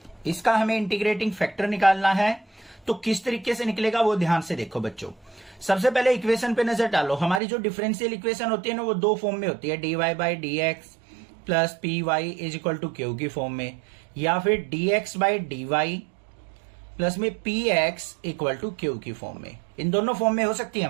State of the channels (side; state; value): left; drops out; at 7.4 s